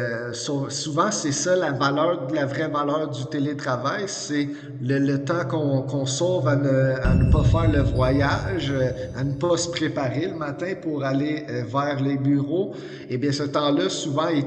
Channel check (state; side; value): identical; both; correlation 1.00